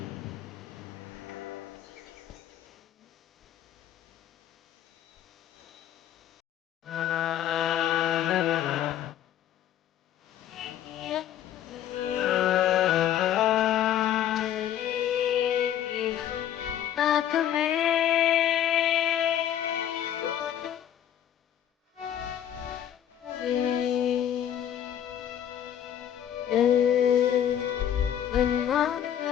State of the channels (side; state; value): right; quieter; 10.5 dB